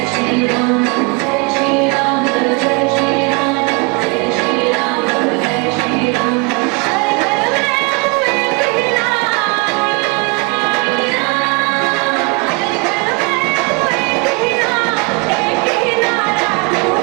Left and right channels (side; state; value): left; quieter; 30.7 dB